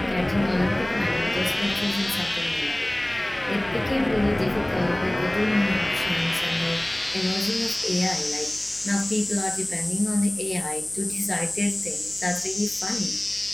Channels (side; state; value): left; noise; hum, 22 dB below the sound